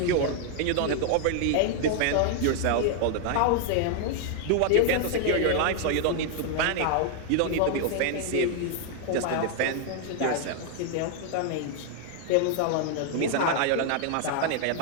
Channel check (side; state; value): both; different; correlation 0.00